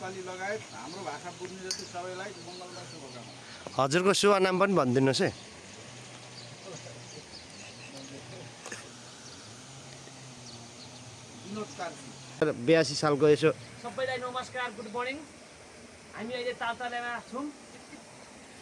लगायत हाम्रो भाषा बुझ्ने जति सबैलाई मङ्गलमय शुभकामना। हजुरको शुभ नाम पनि भनिदिनुहोस् है। विनोद कार्की। 82 सालको यसो सबैलाई नमस्कार, गुड मर्निङ। हामी अहिले तालतलामा छौँ।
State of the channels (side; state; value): both; identical; correlation 1.00